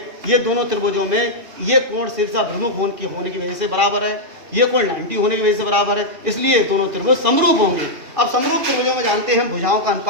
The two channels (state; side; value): late; left; 2.5 ms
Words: ये दोनों त्रिभुजों में ये कोण शीर्षाभिमुख होने की वजह से बराबर है, ये कोण 90 होने की वजह से बराबर है, इसलिए दोनों त्रिभुज समरूप होंगे। अब समरूप त्रिभुजों में जानते हैं भुजाओं का